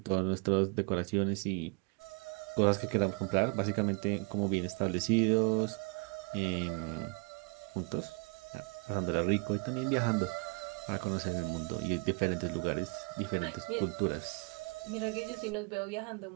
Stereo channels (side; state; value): left; quieter; 32.1 dB